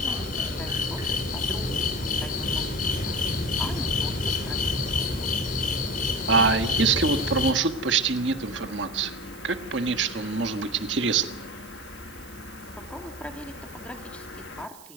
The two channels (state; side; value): noise; right; hiss, 21 dB below the sound